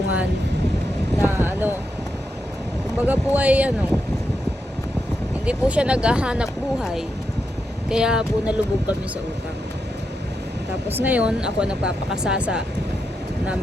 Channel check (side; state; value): both; normal; correlation 0.85